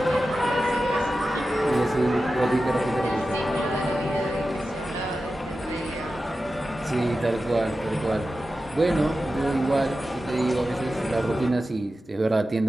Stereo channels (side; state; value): both; normal; correlation 0.93